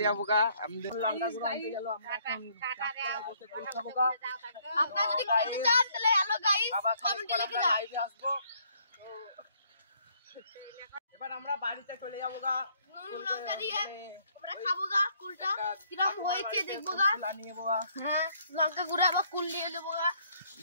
যাবো গা। লঙ্কা গুঁড়ো আনতে গেল, আমরা এখন বসে কুল খাবো গা। আপনারা যদি খেতে চান তাহলে হ্যালো গাইস কমেন্টে লিখে যান। লাইভে আসবো। এবার আমরা বাড়িতে চলে যাবো গা। লঙ্কা দিয়ে আমরা খাবো গা কুলটা, কিরকম হয়েছে দেখবো গা। হ্যাঁ, লঙ্কা গুঁড়ো আবার কুল নিয়ে নেবো গা।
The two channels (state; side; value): inverted; both; correlation -0.66